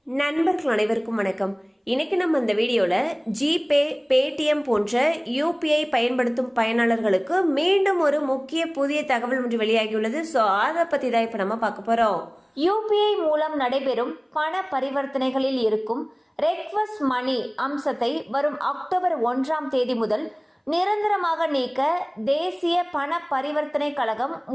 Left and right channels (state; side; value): identical; both; correlation 1.00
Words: நண்பர்கள் அனைவருக்கும் வணக்கம். இன்னைக்கு நம்ம இந்த வீடியோவில் ஜிபே, பேடிஎம் போன்ற யூபிஐ பயன்படுத்தும் பயனாளர்களுக்கு மீண்டும் ஒரு முக்கிய புதிய தகவல் ஒன்று வெளியாகியுள்ளது. ஸோ அதை பற்றி தான் இப்போ நம்ம பார்க்க போகிறோம். யூபிஐ மூலம் நடைபெறும் பண பரிவர்த்தனைகளில் இருக்கும் ரெக்வஸ்ட் மணி அம்சத்தை வரும் அக்டோபர் 1 முதல் நிரந்தரமாக நீக்க தேசிய பண பரிவர்த்தனை கழகம்